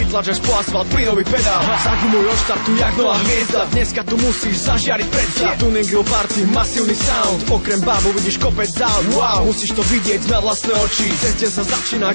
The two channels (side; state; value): both; inverted; correlation -1.00